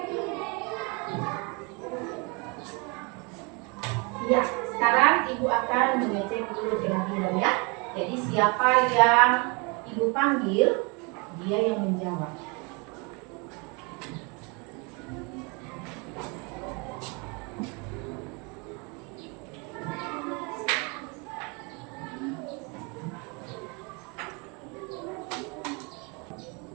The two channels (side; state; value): left; quieter; 30.8 dB